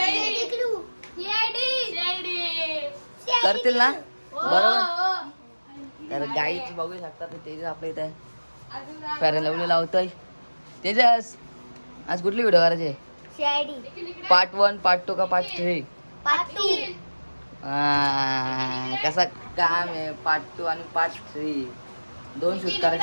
करतील ना बरोबर. तर गाईच बघू शकता तेजस आपल्या इथे फेअर लवली लावतोय. तेजस आज कुठली व्हिडिओ करायची? पार्ट 1 पार्ट 2 का पार्ट 3? पार्ट 2. कसा काम आहे पार्ट 2 आणि पार्ट 3 2 शूट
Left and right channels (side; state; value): both; inverted; correlation -1.00